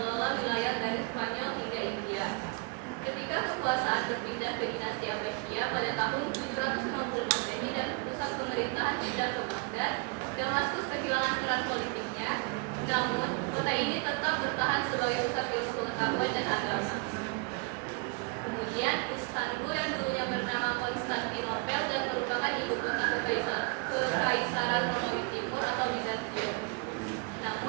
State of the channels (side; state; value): left; quieter; 32.7 dB